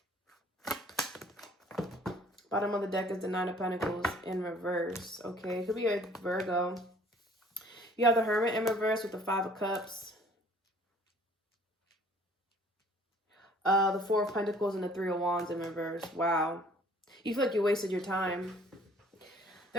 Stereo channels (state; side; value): normal; both; correlation 0.55